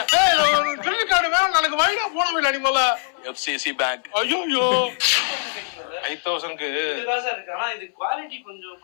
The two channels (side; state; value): right; silent; 60 dB below the other